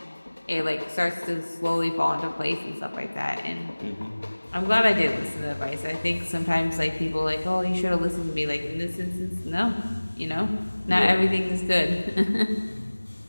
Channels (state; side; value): inverted; both; correlation -1.00